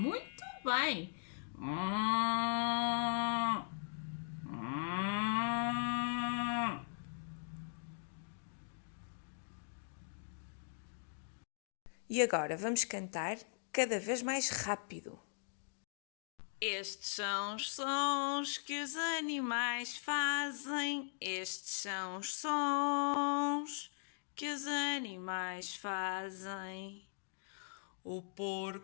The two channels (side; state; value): right; silent; digital silence